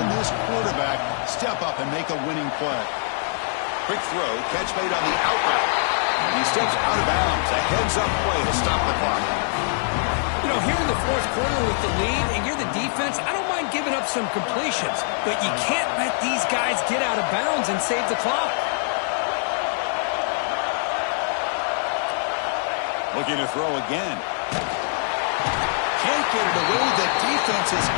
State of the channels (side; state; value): right; silent; 63 dB below the other